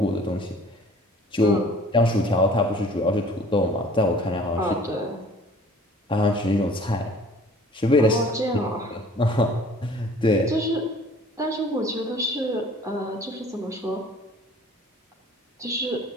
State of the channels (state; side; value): normal; both; correlation 0.51